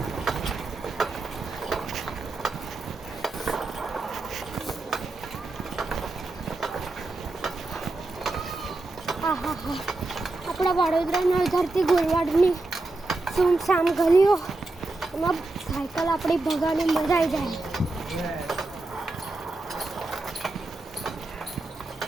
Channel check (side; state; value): left; quieter; 3.1 dB